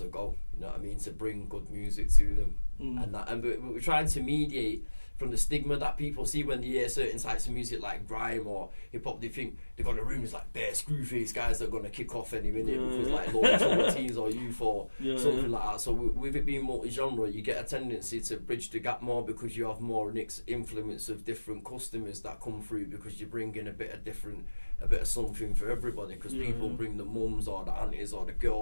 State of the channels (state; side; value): inverted; both; correlation -1.00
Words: a go, you know what I mean, to bring good music to them. And we're trying to mediate from the stigma that people see when they hear certain types of music like grime or hip hop. They think they got the rooms like bare screwface guys that are gonna kick off any minute because like low teens or youth or something like that. So with it being multi-genre, you get a tendency to bridge the gap more because you have more influence of different customers that come through, because you bring in a bit of something for everybody, because people bring the mums or the aunties or the